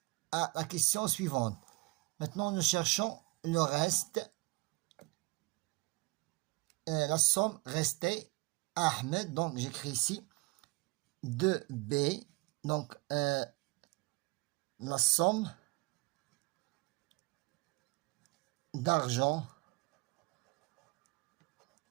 la question suivante. Maintenant, nous cherchons le reste. La somme restée à Ahmed. Donc, j'écris ici 2B. Donc, la somme d'argent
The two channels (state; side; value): quieter; left; 25.5 dB